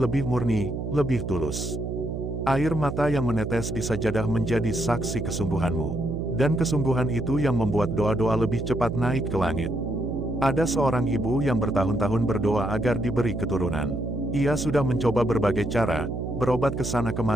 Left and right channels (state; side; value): noise; right; hum, 5 dB below the sound